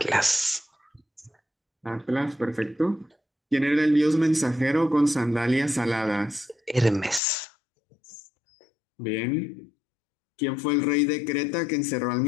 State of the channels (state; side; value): drops out; right; at 7.2 s